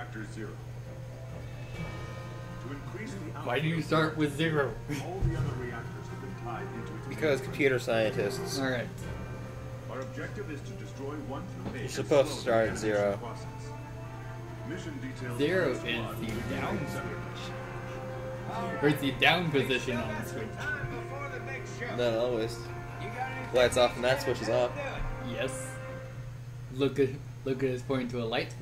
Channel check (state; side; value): identical; both; correlation 1.00